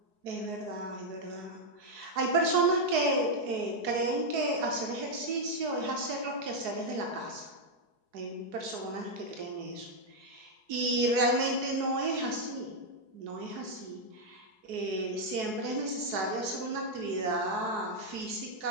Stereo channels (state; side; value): late; left; 4.7 ms